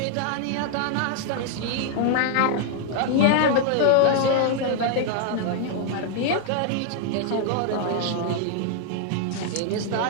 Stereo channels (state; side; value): different; both; correlation 0.00